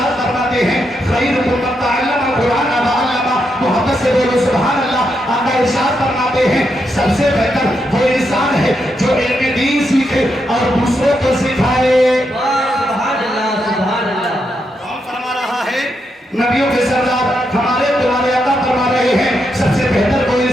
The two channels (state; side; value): normal; both; correlation 0.82